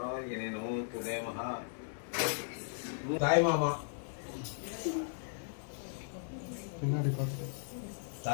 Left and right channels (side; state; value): right; silent; 53 dB below the other